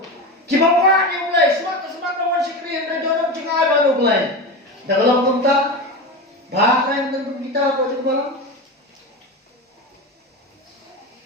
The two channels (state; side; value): normal; both; correlation 0.22